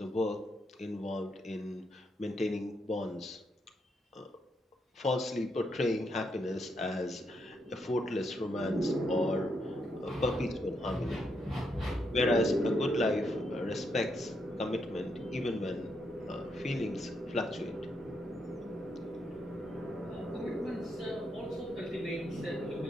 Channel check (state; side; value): normal; both; correlation 0.79